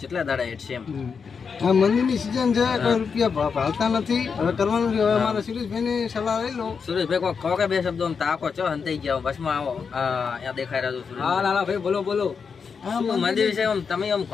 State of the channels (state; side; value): quieter; right; 5.8 dB